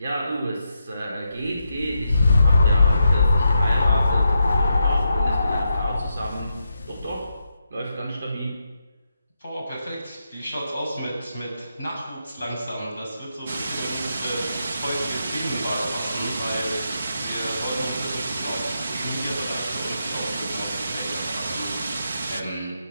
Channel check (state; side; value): inverted; both; correlation -0.84